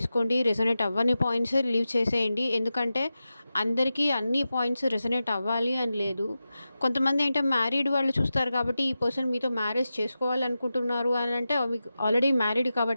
రెసొనేట్ అవ్వని పాయింట్స్ లీవ్ చేసేయండి. ఎందుకంటే అందరికీ అన్ని పాయింట్స్ రెసొనేట్ అవ్వాలి అని లేదు. కొంతమంది అంటే మ్యారీడ్ వాళ్ళు చూస్తారు కాబట్టి ఈ పర్సన్ మీతో మ్యారేజ్ చేసుకోవాలనుకుంటున్నారు అని అంటే మీకు ఆల్రెడీ మ్యారీడ్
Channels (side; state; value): both; inverted; correlation -0.92